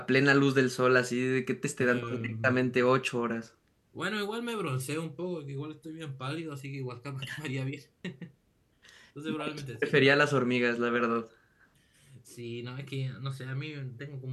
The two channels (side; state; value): both; identical; correlation 1.00